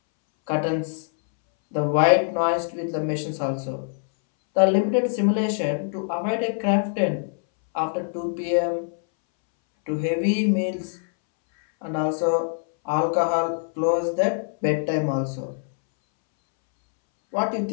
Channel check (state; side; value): silent; right; 63 dB below the other